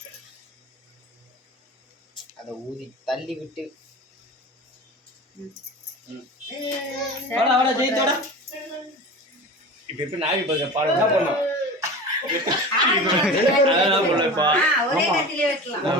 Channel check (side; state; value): both; normal; correlation 0.33